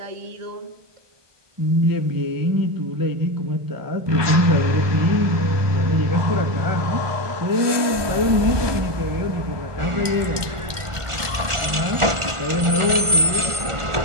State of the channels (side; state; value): left; late; 1.4 ms